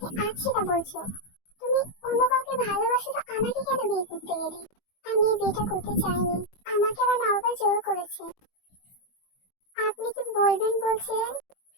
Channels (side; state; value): right; late; 20 ms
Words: আজ সেটা বলছো। তুমি অন্য কাউকে ভালোবাসো তো আমাকে কেন বিয়ে করতে গেলে? আমি এই বিয়েটা করতে চাইনি, আমাকে আমার মা বাবা জোর করেছে। আপনি কি বলবেন বলছিলেন?